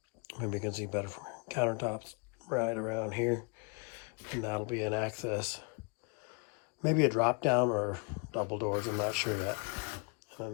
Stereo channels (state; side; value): quieter; right; 33.6 dB